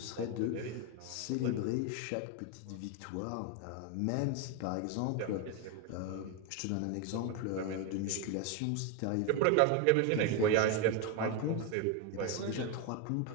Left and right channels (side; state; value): both; different; correlation 0.02